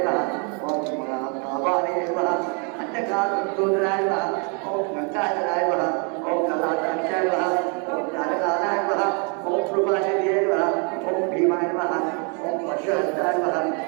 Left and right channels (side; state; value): left; quieter; 36.7 dB